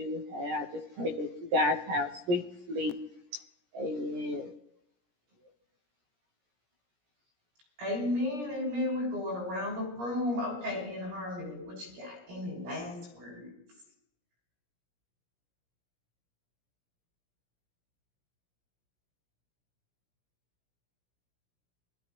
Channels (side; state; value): left; late; 17 ms